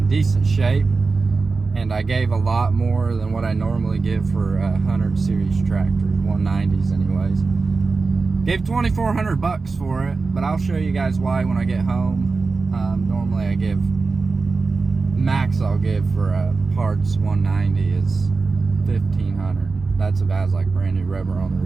decent shape. And I gave a lot more than what I normally give for 100 series tractors, 190s anyways. Gave 2,400 bucks for it, but I'll show you guys why when I get home. Normally I give, max I'll give for a parts 190 is 1,500. That's if it has like brand new rubber on the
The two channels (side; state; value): left; quieter; 4.2 dB